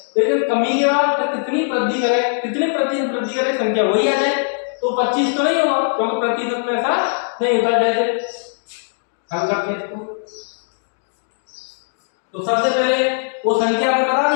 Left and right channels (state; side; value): silent; right; digital silence